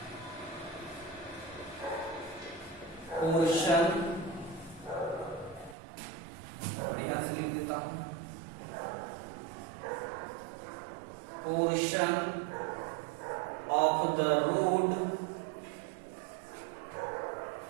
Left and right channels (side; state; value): left; drops out; at 5.8 s